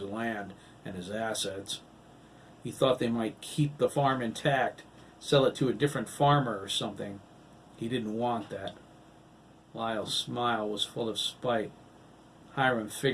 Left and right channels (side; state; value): both; identical; correlation 1.00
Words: land and his assets. He thought they might keep the farm intact, sell it to a different farmer or something. He didn't want that." Lyle's smile was full of spite. "Hiram